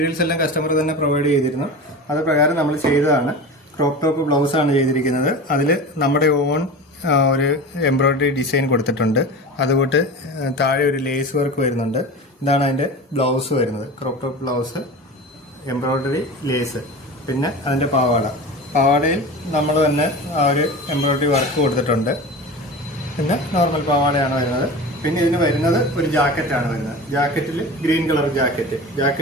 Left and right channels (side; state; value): both; normal; correlation 0.31